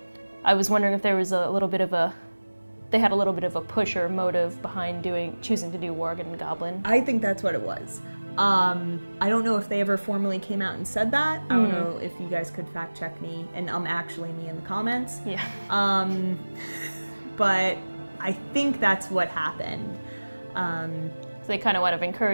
I was wondering if there was they had a little bit of a push or motive behind choosing to do Worgen and Goblin. I think that's what it was. I don't know if they ever formally came out and said that. I don't know if you guys could fact check me, and actually me in the comments. Yeah. But I think that's what happened. So they kind of want to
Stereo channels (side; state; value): both; inverted; correlation -1.00